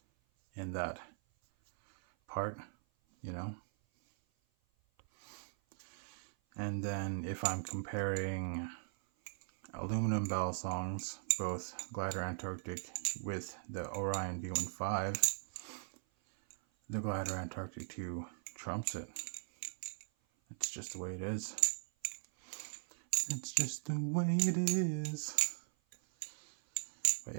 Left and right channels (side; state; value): left; silent; 52 dB below the other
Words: in that part, you know. And then if I'm comparing aluminum Balisongs, both Glidr Antarctic with the Orion V15, the Glidr Antarctic 2 trumps it. It's just the way it is. It's just the way it is. But